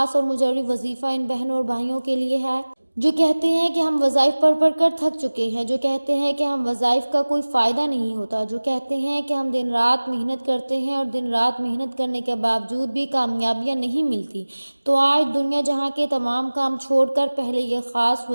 اور مجرب وظیفہ ان بہنوں اور بھائیوں کے لیے ہے جو کہتے ہیں کہ ہم وظائف پڑھ پڑھ کر تھک چکے ہیں، جو کہتے ہیں کہ ہم وظائف کا کوئی فائدہ نہیں ہوتا، جو کہتے ہیں کہ ہم دن رات محنت کرتے ہیں اور دن رات محنت کرنے کے باوجود بھی کامیابیاں نہیں ملتی، تو آج دنیا جہاں کے تمام کام چھوڑ کر پہلے یہ خاص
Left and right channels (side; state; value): both; inverted; correlation -1.00